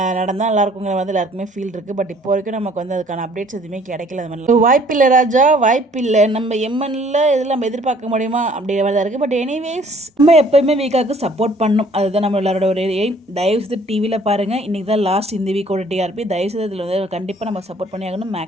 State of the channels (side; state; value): both; normal; correlation 0.57